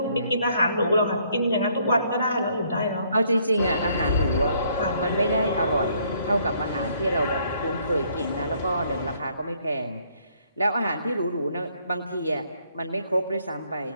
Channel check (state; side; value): inverted; both; correlation -0.66